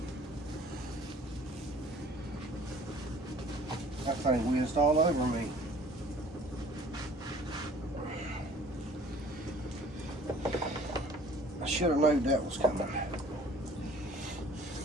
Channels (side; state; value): both; normal; correlation 0.52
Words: That thing whizzed all over me. I should have known that was coming.